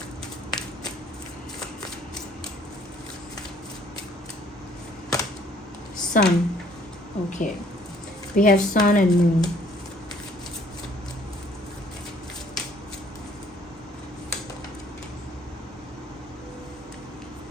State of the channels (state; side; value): normal; both; correlation 0.61